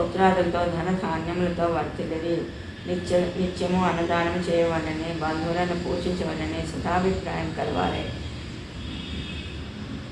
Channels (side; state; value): both; identical; correlation 1.00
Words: ధనధాన్యములతో వర్తిల్లిరి. నిత్యము అన్నదానం చేయవలని, బంధువులను పూజించవలని సదాభిప్రాయం కలవాలి.